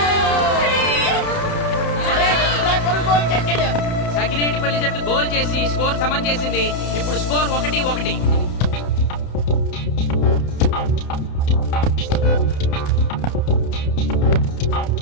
సకినేటిపల్లి జట్టు గోల్ చేసి స్కోర్ సమం చేసింది. ఇప్పుడు స్కోర్ 1-1.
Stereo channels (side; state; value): right; late; 31 ms